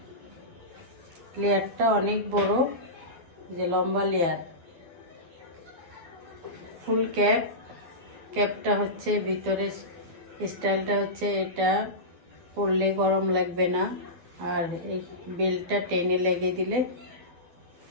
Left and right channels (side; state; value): left; late; 12 ms